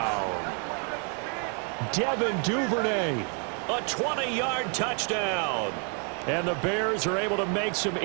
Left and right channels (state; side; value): quieter; left; 39.0 dB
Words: Devin Duvernay. A 20-yard touchdown. And the Bears are able to make some